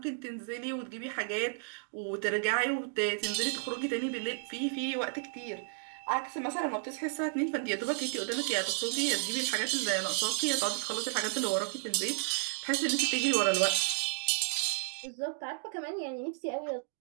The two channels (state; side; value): silent; left; digital silence